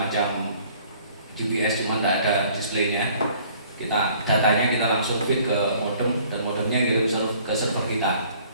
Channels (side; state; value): both; inverted; correlation -0.56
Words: GPS, cuma tidak ada displaynya. Datanya kita langsung feed ke modem, dan modemnya kirim ke server kita,